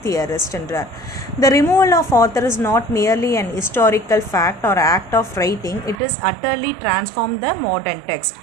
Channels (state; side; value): drops out; left; at 6.0 s